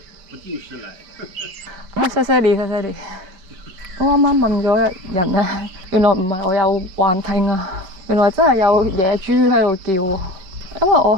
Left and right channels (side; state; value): left; late; 5.2 ms